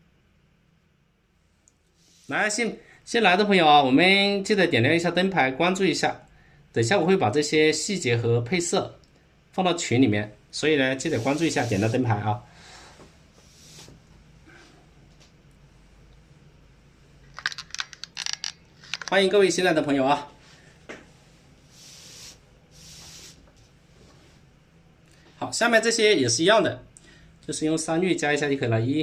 来，新来的朋友啊，我们记得点亮一下灯牌，关注一下。等一下我会把这些细节和配色放到群里面，所以呢，记得关注一下，点亮灯牌啊。欢迎各位新来的朋友啊。好，下面这些也是一样的，就是用3滤加一下就可以了。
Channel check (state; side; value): identical; both; correlation 1.00